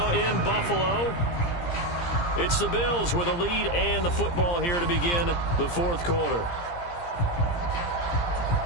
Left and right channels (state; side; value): late; right; 17 ms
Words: in Buffalo. It's the Bills with a lead and the football here to begin the fourth quarter.